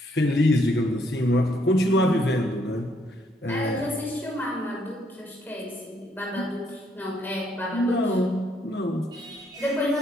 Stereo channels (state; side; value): normal; both; correlation 0.71